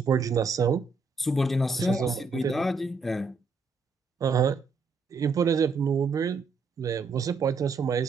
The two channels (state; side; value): quieter; left; 4.3 dB